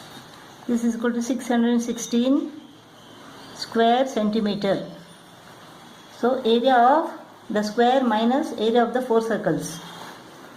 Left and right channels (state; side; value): identical; both; correlation 1.00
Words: This is equal to 616 square centimeter. So area of the square minus area of the 4 circles